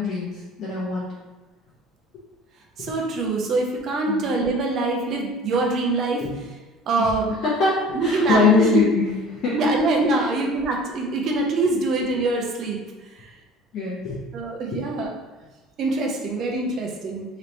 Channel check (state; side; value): normal; both; correlation 0.45